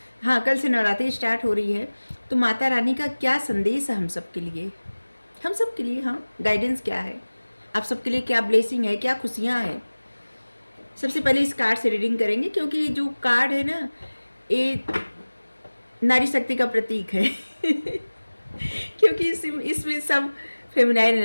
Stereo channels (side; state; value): both; inverted; correlation -1.00